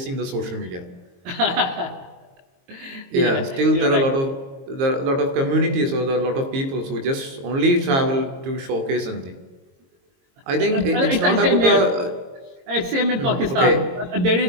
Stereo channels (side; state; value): left; late; 22 ms